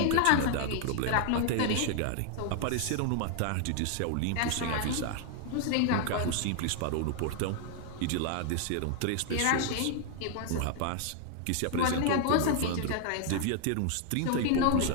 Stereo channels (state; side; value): different; both; correlation 0.00